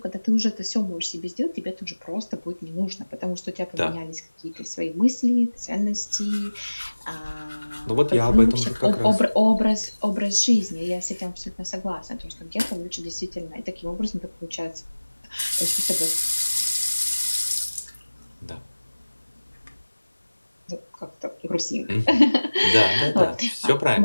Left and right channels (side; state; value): both; inverted; correlation -1.00